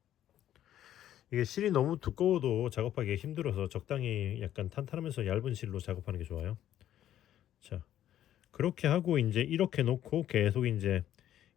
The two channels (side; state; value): right; quieter; 11.7 dB